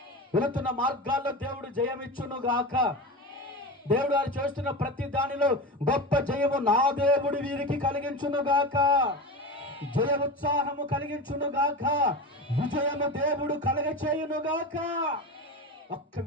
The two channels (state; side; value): normal; both; correlation 0.26